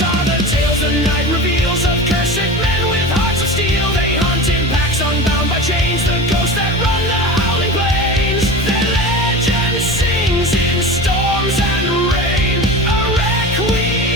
are the tales the night reveals of cursed men with hearts of steel. They hunt in packs unbound by chains, the ghosts that run the howling plains. Their legend sings in storms and rain, a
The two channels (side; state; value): both; normal; correlation 0.31